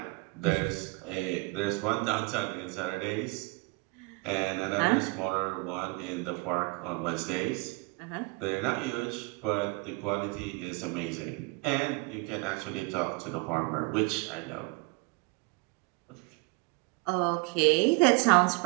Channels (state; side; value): quieter; left; 26.6 dB